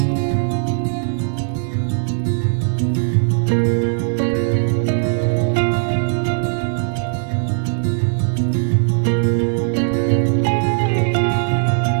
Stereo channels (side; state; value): left; silent; digital silence